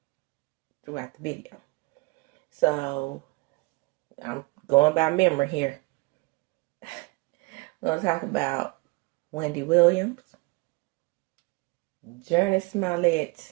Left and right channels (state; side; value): quieter; left; 26.9 dB